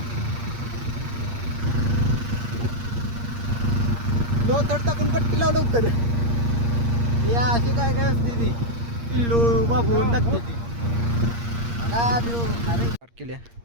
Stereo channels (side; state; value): left; late; 8.6 ms